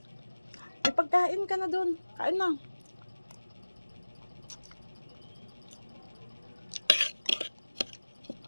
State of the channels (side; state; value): both; inverted; correlation -1.00